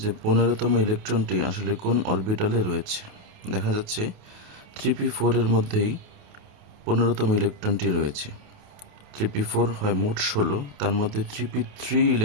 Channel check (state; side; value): late; left; 28 ms